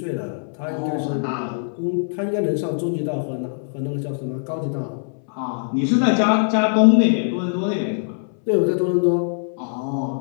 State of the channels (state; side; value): silent; right; 64 dB below the other